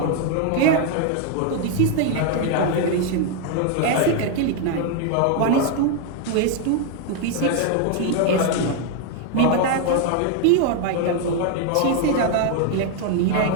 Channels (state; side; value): different; both; correlation 0.01